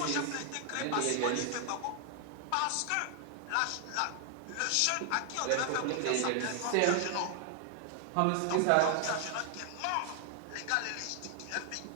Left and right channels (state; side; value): different; both; correlation 0.00